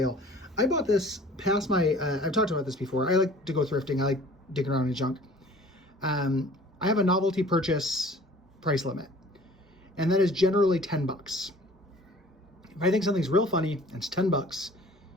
I bought this past my, I've talked about this before, I like to go thrifting, I like digging around in junk. I have a novelty purchase price limit, and that is generally $10. If I think something's real funny and it's $10,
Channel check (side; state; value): both; normal; correlation 0.49